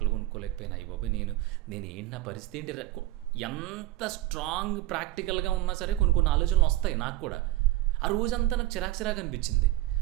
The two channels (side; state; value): left; quieter; 16.6 dB